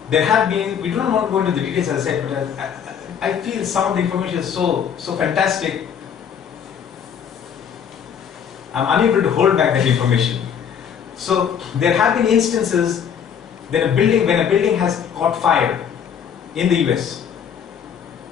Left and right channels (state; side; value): quieter; right; 8.0 dB